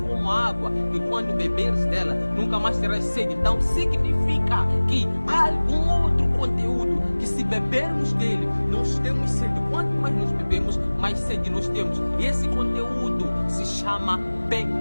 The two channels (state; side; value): inverted; both; correlation -1.00